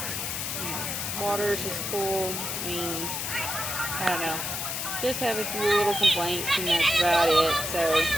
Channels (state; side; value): noise; left; hiss, 3 dB below the sound